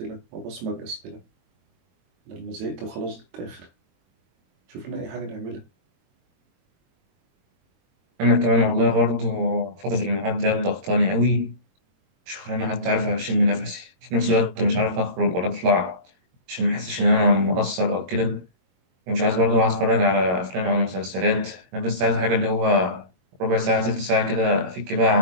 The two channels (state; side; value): late; left; 22 ms